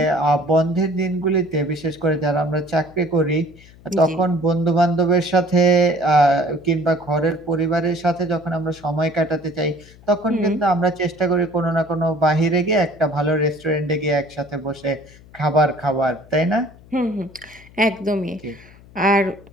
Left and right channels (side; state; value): left; noise; hum, 24 dB below the sound